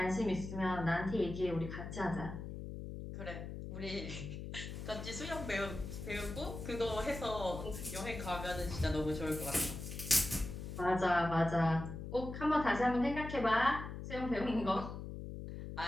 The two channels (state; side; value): noise; left; hum, 8 dB below the sound